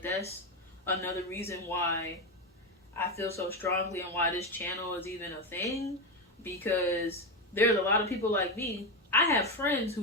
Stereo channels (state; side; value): normal; both; correlation 0.12